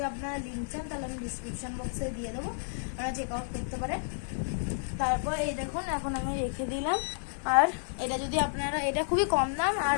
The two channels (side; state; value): right; silent; digital silence